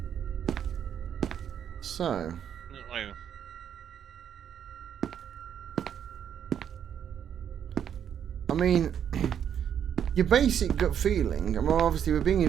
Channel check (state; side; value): quieter; left; 8.9 dB